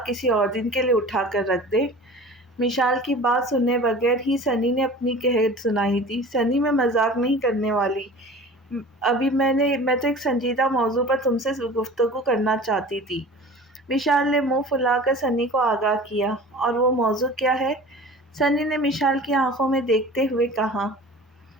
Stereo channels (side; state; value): both; normal; correlation 0.40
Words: کسی اور دن کے لیے اٹھا کر رکھ دے۔ مشال کی بات سنے بغیر ہی سنی نے اپنی قہر سنائی تھی۔ سنی میں مذاق نہیں کرنے والی، ابھی میں تو ایک سنجیدہ موضوع پر تم سے گفتگو کرنا چاہتی تھی۔ مشال نے منہ پھلا کر سنی کو آگاہ کیا۔ اور وہ موضوع کیا ہے؟ سنی نے مشال کی آنکھوں میں دیکھتے ہوئے کہا۔